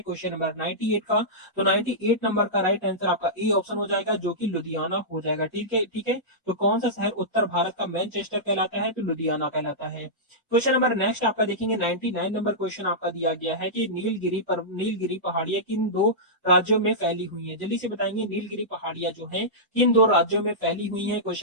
क्वेश्चन नंबर 98 का तो 98 नंबर का राइट आंसर आपका ए ऑप्शन हो जाएगा, जो कि लुधियाना हो जाएगा। ठीक है, ठीक है, तो कौन सा शहर उत्तर भारत का मैनचेस्टर कहलाता है, तो लुधियाना कहलाता है। क्वेश्चन नंबर नेक्स्ट आपका देखेंगे 99 नंबर क्वेश्चन आपका दिया गया है कि नीलगिरी पहाड़ियां किन दो राज्यों में फैली हुई है। जल्दी से बताएंगे नीलगिरी पहाड़ियां जो है किन दो राज्यों में फैली हुई है।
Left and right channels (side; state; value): both; normal; correlation -0.14